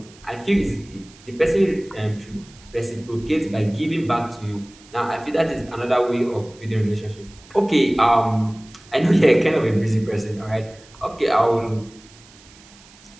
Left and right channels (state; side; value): noise; right; hiss, 24 dB below the sound